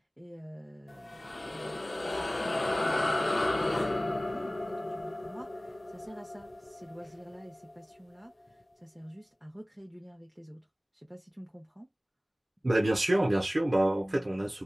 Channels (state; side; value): normal; both; correlation 0.98